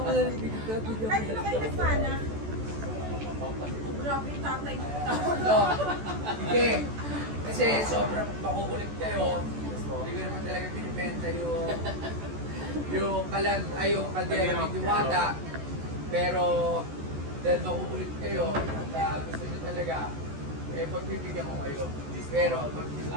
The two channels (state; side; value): late; left; 14 ms